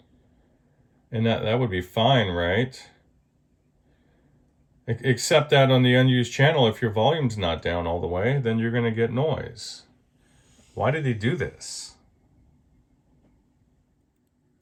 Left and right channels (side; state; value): both; identical; correlation 1.00